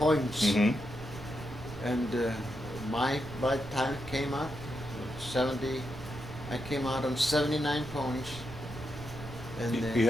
Mm-hmm. And by the time it came out, 70, I came out on 79 points. And You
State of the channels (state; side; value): noise; right; rumble, 13 dB below the sound